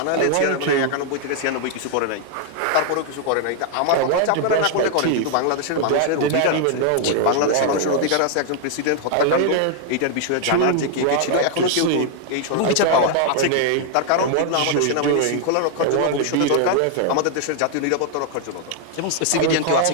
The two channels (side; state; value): both; different; correlation 0.00